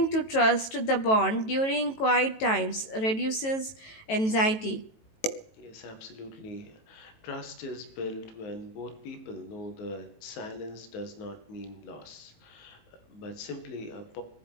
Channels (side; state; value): right; late; 18 ms